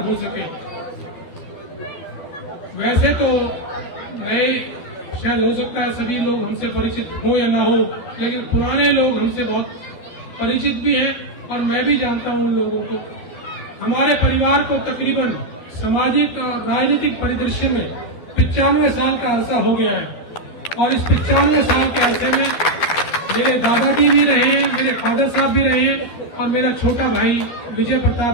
सके। वैसे तो नए शायद हो सकता है सभी लोग हमसे परिचित हो या ना हो, लेकिन पुराने लोग हमसे बहुत परिचित भी हैं और मैं भी जानता हूं उन लोगों को। हमारे परिवार को तकरीबन सामाजिक और राजनीतिक परिदृश्य में 95 साल का अरसा हो गया है और इस 95 साल के अरसे में मेरे दादाजी भी रहे हैं, मेरे फादर साहब भी रहे हैं और मेरा छोटा भाई विजय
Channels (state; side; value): late; right; 12 ms